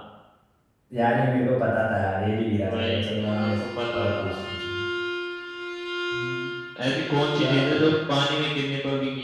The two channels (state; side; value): identical; both; correlation 1.00